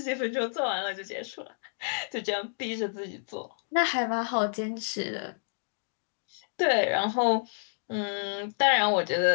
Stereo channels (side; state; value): right; silent; digital silence